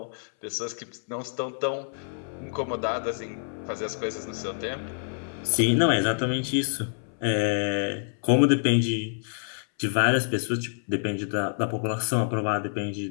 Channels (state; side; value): silent; right; 59 dB below the other